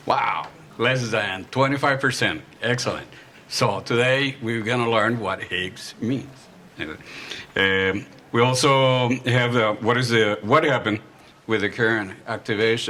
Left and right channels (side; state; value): both; identical; correlation 1.00